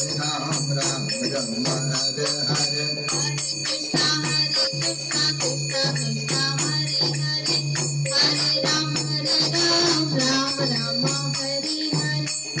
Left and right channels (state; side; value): identical; both; correlation 1.00